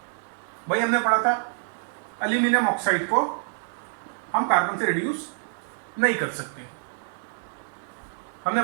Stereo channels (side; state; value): left; silent; digital silence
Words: भाई हमने पढ़ा था एल्यूमिनियम ऑक्साइड को हम कार्बन से रिड्यूस नहीं कर सकते. हमने